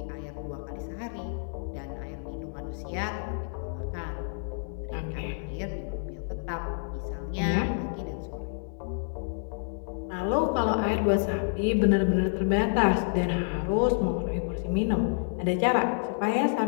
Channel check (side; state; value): right; silent; 59 dB below the other